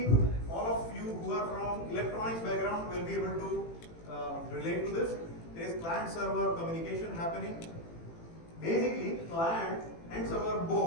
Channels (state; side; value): late; right; 18 ms